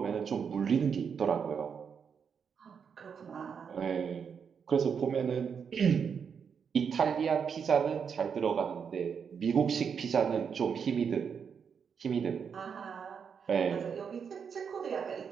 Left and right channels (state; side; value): quieter; left; 6.7 dB